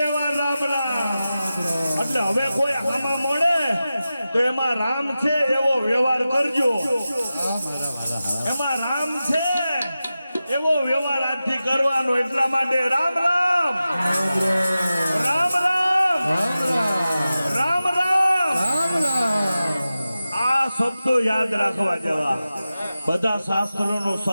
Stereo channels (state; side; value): inverted; both; correlation -0.94